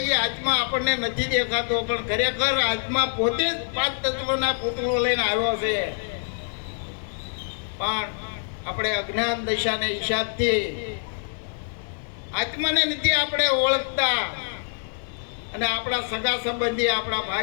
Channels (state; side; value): silent; right; 61 dB below the other